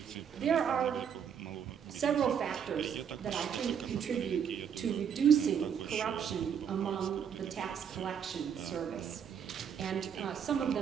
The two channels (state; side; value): quieter; left; 7.9 dB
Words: There are several factors that I think contribute to reducing corruption among the tax collection service. And some of